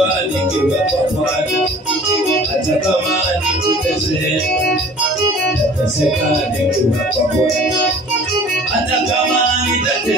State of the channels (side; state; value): both; normal; correlation 0.48